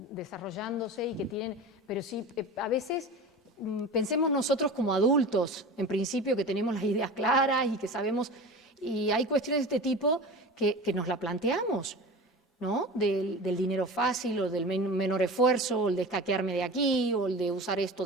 desarrollándose y que tienen... Pero sí, a veces pensemos nosotros como adultos, en principio, que tenemos las ideas claras y que sabemos... Y hay cuestiones de este tipo que nos la planteamos, ¿no? Del dinero fácil o del menor esfuerzo, o el de escaquearme de aquí, o el de usar esto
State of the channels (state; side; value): normal; both; correlation 0.33